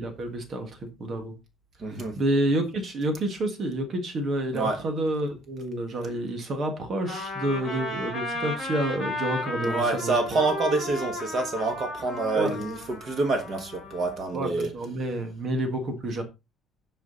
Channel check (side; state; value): both; normal; correlation 0.60